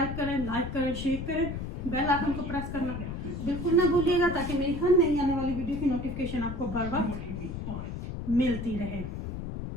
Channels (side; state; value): left; noise; rumble, 6 dB below the sound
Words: करें, लाइक करें, शेयर करें, बेल आइकन को प्रेस करना बिल्कुल ना भूलिएगा ताकि मेरी हर नई आने वाली वीडियो की नोटिफिकेशन आपको बर वक्त मिलती रहे।